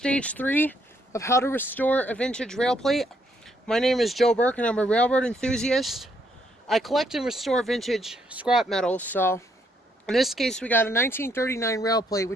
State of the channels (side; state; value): both; normal; correlation 0.72